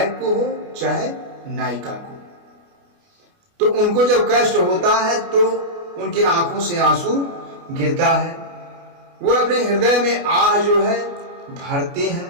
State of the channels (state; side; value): late; left; 29 ms